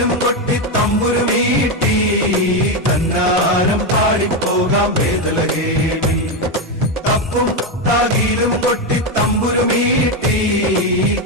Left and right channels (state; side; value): normal; both; correlation 0.09